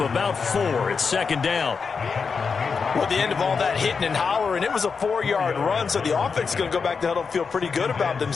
4. It's 2nd down. Well, at the end of all that hitting and hollering, it was a 4-yard run, so the offense is going to go back to huddle and feel pretty good about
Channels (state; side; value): quieter; right; 5.4 dB